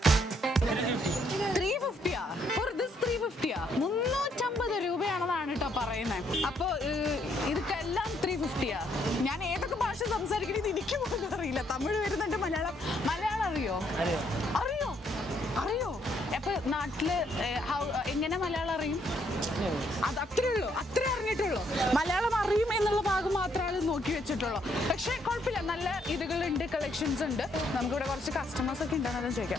350 for this 350 350 രൂപയാണെന്നാണ് കേട്ടോ പറയുന്നത്. അപ്പൊ ഇതൊക്കെല്ലാം 350. ഞാൻ ഏതൊക്കെ ഭാഷ സംസാരിക്കുന്നത് എനിക്ക് പോലും അറിയില്ല. തമിഴ് വരുന്നുണ്ട്, മലയാളം അറിയോ? അപ്പൊ നാട്ടില് എങ്ങനെ മലയാളം അറിയും? അത് അത്രേ ഉള്ളൂ, അത്രേ അറിഞ്ഞിട്ടുള്ളൂ. മലയാളം അറിയും എന്നുള്ള ഭാഗം മാത്രമാണ് നോക്കി വെച്ചിട്ടുള്ളൂ. പക്ഷെ കുഴപ്പമില്ല, നല്ല ഇതുകളുണ്ട്, കളക്ഷൻസ് ഉണ്ട്. നമുക്കിവിടെ കുറച്ച് കസ്റ്റമേഴ്സ് ഒക്കെ ഉണ്ടെന്നാലും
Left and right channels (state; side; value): normal; both; correlation 0.71